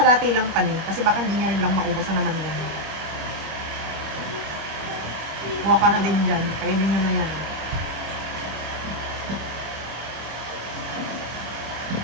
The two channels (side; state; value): left; late; 25 ms